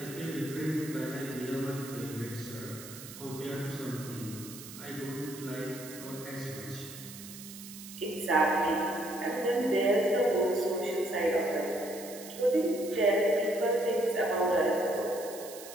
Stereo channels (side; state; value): right; noise; hiss, 14 dB below the sound